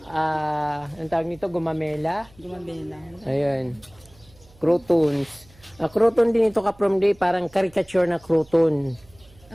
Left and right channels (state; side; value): noise; right; hum, 27 dB below the sound